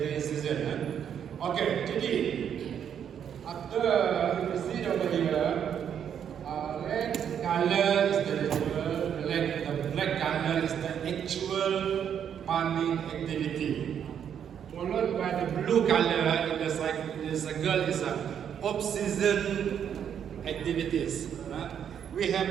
season. Okay, jadi after you see over here, red color is the ritual. The black color is the actual farming activity. Followed by the blue color in the circle is off-season activities. We have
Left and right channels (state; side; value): quieter; left; 8.6 dB